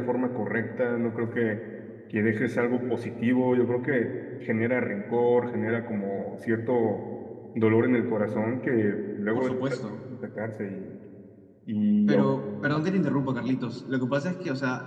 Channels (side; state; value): both; identical; correlation 1.00